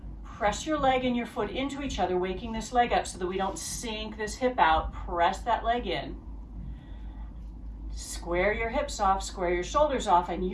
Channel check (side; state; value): both; identical; correlation 1.00